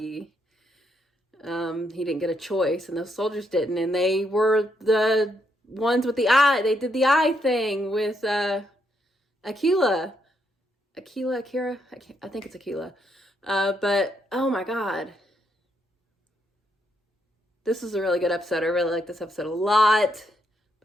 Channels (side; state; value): both; normal; correlation 0.77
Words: He didn't get a choice, and those soldiers didn't. And they were the ones with the eye. They did the eye thing with Akira. I think it's Akira. But oh my God, this is a really good episode. I really like this episode a lot.